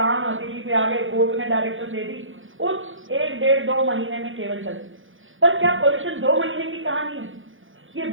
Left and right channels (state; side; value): late; left; 0.58 ms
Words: हथेली पे आ गए, कोर्ट ने डायरेक्शन दे दी, उस 1-1.5-2 महीने में केवल चलती। पर क्या पॉल्यूशन 2 महीने की कहानी है? ये